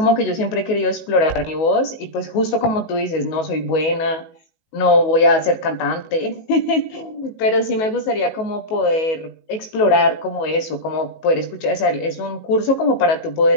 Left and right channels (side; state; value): right; late; 19 ms